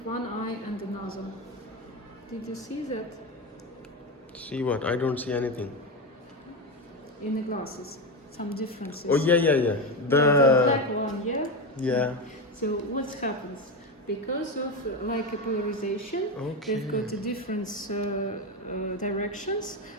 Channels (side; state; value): both; normal; correlation 0.16